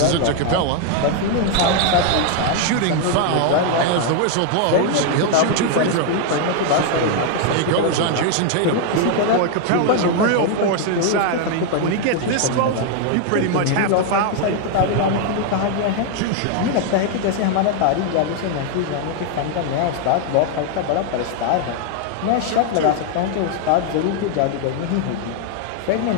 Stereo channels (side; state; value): both; different; correlation 0.00